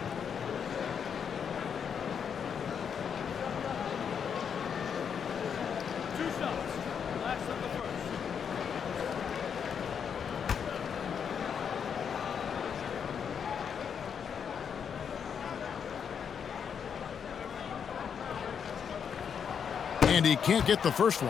And he can't get the first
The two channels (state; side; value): quieter; right; 7.3 dB